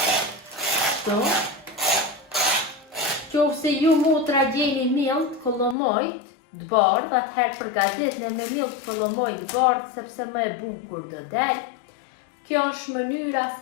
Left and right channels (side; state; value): right; drops out; at 5.8 s